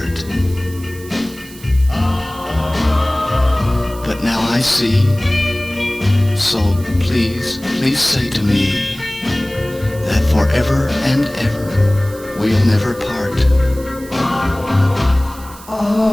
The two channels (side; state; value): right; noise; hiss, 19 dB below the sound